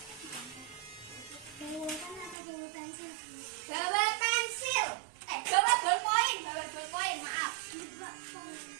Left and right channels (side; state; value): left; drops out; at 2.4 s